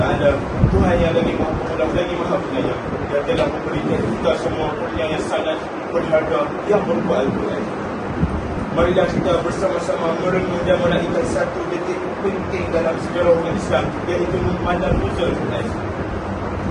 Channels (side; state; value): both; identical; correlation 1.00